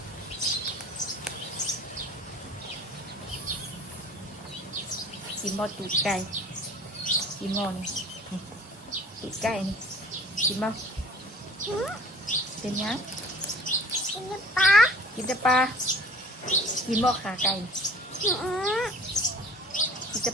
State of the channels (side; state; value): both; normal; correlation 0.47